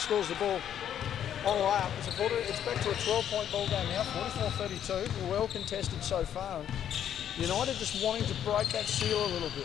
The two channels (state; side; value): quieter; right; 9.8 dB